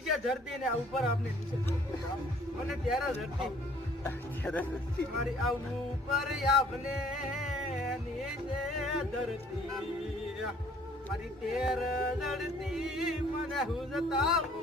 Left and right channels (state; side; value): normal; both; correlation 0.57